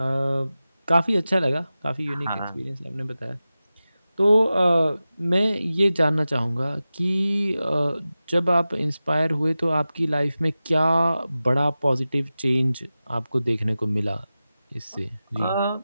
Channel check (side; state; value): both; inverted; correlation -0.95